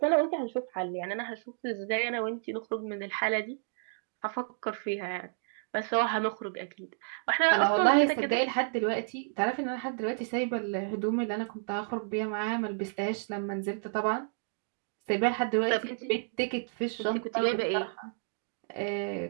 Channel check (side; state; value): left; silent; digital silence